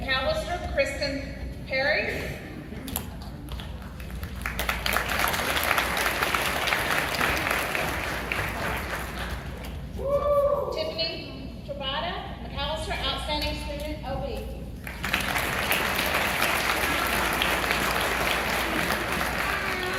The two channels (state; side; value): identical; both; correlation 1.00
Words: Kristen Perry. Tiffany Trabata, McAllister, outstanding student, OB.